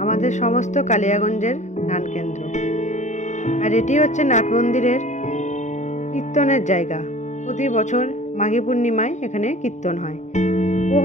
আমাদের সমস্ত কালিয়াগঞ্জের নাট কেন্দ্র। আর এটি হচ্ছে নাট মন্দিরের কীর্তনের জায়গা। প্রতি বছর মাঘী পূর্ণিমায় এখানে কীর্তন হয়।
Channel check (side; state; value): right; late; 0.34 ms